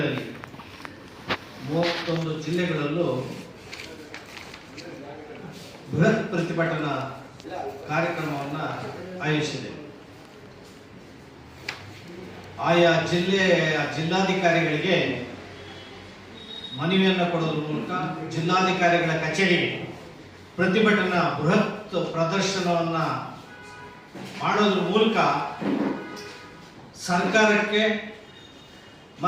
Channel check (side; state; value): both; identical; correlation 1.00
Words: 31 ಜಿಲ್ಲೆಗಳಲ್ಲೂ ಬೃಹತ್ ಪ್ರತಿಭಟನಾ ಕಾರ್ಯಕ್ರಮವನ್ನು ಆಯೋಜಿಸಿದೆ. ಆಯಾ ಜಿಲ್ಲಾಧಿಕಾರಿಗಳಿಗೆ ಮನವಿಯನ್ನು ಕೊಡೋದ್ರ ಮೂಲಕ ಜಿಲ್ಲಾಧಿಕಾರಿಗಳ ಕಚೇರಿಗೆ ಪ್ರತಿಭಟನಾ ಬೃಹತ್ ಪ್ರದರ್ಶನವನ್ನು ಮಾಡೋದ್ರ ಮೂಲಕ ಸರ್ಕಾರಕ್ಕೆ